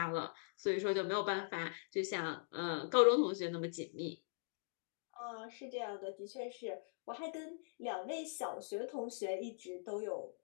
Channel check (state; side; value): silent; right; digital silence